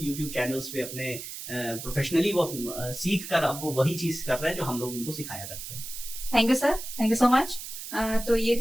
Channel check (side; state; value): right; noise; hiss, 9 dB below the sound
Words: यूट्यूब चैनल्स पे अपने प्रोफेशनली वो सीख कर अब वो वही चीज कर रहे हैं जो हम लोग उनको सिखाया करते हैं। Thank you sir, thank you so much. तो ये